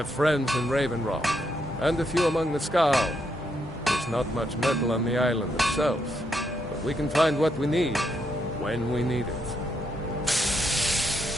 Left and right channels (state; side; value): normal; both; correlation 0.78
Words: friends in Raven Rock, and a few among the Skull. There's not much metal on the island itself, but we can find what we need, when we need it.